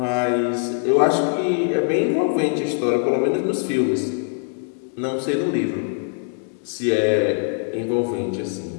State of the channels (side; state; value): right; silent; 64 dB below the other